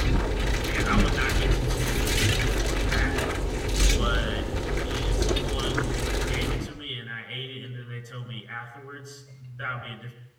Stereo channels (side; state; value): both; identical; correlation 1.00